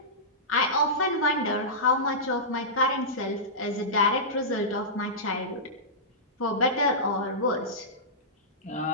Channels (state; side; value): normal; both; correlation -0.17